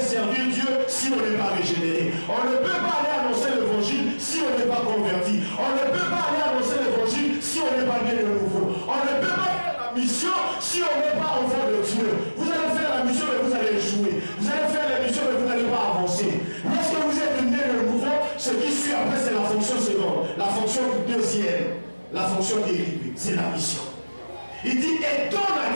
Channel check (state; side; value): inverted; both; correlation -1.00